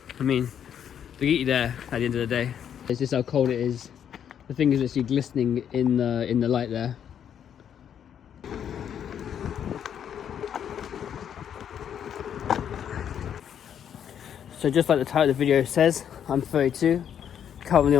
I mean, they get you there at the end of the day. It's just how cold it is. The thing is actually glistening in the light there. So just like the title of the video says, I'm 32, currently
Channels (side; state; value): right; quieter; 8.9 dB